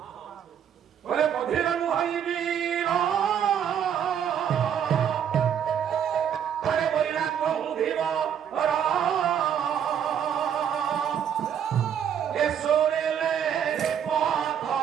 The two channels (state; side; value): quieter; left; 8.8 dB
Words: বলে বধির নুহইবি আরে বইলা কহুধিব এসোরেলে